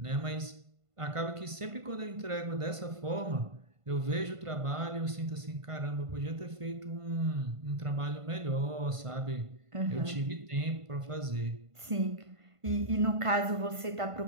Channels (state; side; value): late; left; 1.5 ms